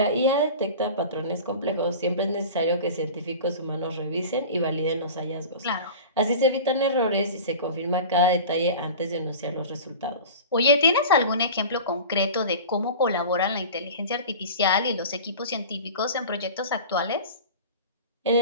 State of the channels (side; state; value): both; inverted; correlation -0.36